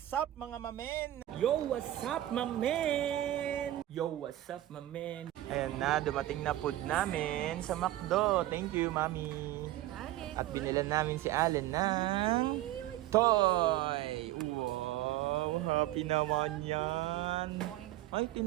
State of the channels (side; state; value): left; quieter; 14.5 dB